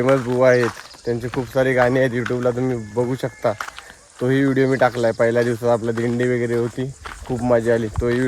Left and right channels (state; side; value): identical; both; correlation 1.00